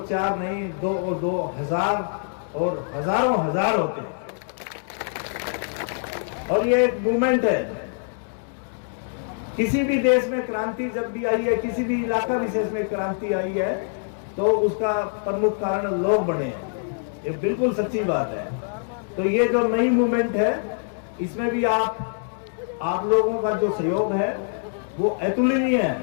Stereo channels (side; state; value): right; silent; digital silence